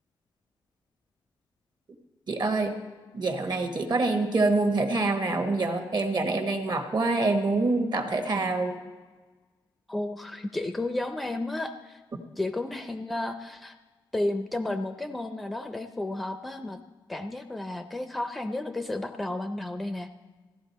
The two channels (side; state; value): both; normal; correlation 0.78